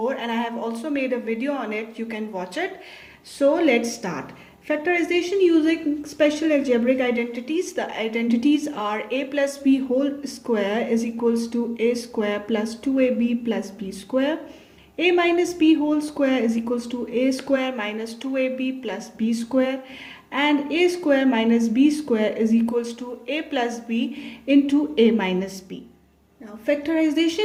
and I have also made a video on it. You can watch it. So let's start. Factorization using special algebraic identities. The identities are a plus b whole square is equals to a square plus 2ab plus b square. A minus b whole square is equals to a square minus 2ab plus b square. And a square minus b square is equals to a plus b into a minus b. Now,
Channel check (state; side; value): identical; both; correlation 1.00